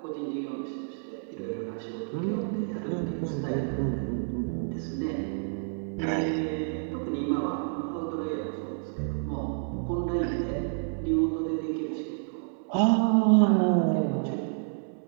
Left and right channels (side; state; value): left; silent; 58 dB below the other